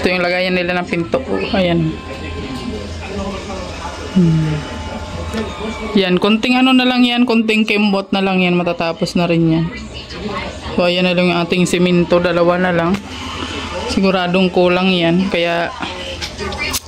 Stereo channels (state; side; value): identical; both; correlation 1.00